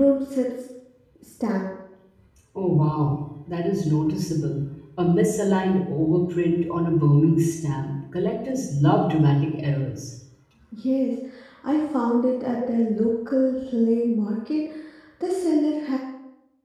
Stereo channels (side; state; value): both; identical; correlation 1.00